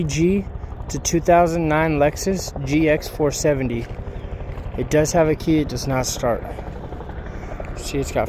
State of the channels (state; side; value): identical; both; correlation 1.00